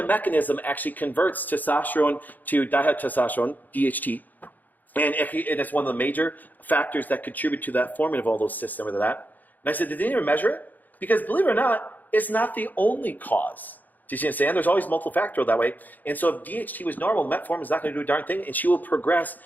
mechanism actually converts testosterone to dihydrotestosterone, DHT. And it's one of the major factors that contribute to that forming of all those cysts and with that. And I said, did they even measure it? Because believe it or not, it's not the only cause. Do you see what I'm saying? There's always multiple factorial that way. And so if DHT was normal, metformin is not going to do a darn thing, and she will progress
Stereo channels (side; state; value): right; late; 0.084 ms